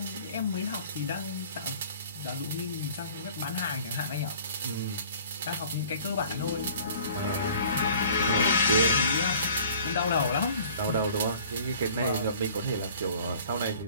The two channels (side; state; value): both; inverted; correlation -0.50